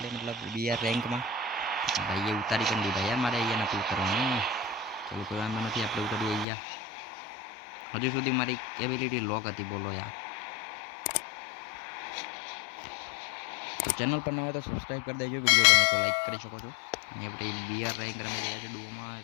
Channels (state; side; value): drops out; right; at 6.5 s